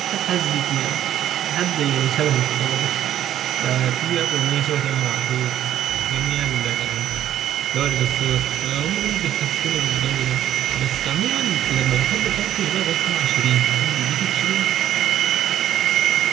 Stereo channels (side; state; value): left; quieter; 11.5 dB